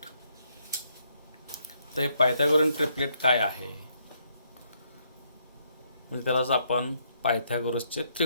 तर हे पायथागोरियन ट्रिपलेट काय आहे, म्हणजे त्यालाच आपण पायथागोरसचे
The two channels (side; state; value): both; inverted; correlation -0.73